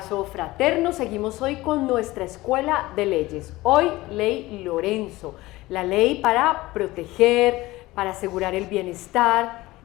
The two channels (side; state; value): right; quieter; 19.0 dB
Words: fraterno. Seguimos hoy con nuestra Escuela de Leyes. Hoy, Ley Lorenzo, la ley para proteger, para asegurar el bienestar